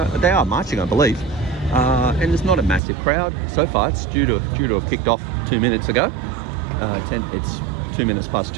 are marching, I believe. And there's not a massive crowd so far. It's due to have kicked off 2 minutes ago. It's 2 minutes past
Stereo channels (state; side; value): drops out; left; at 2.8 s